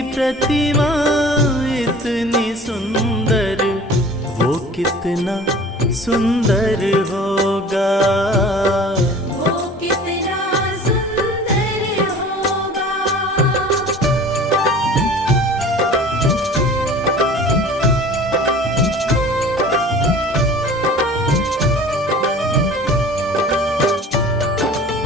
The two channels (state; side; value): normal; both; correlation 0.43